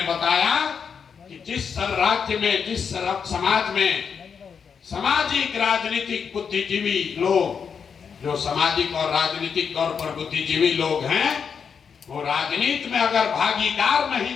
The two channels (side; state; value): right; quieter; 6.5 dB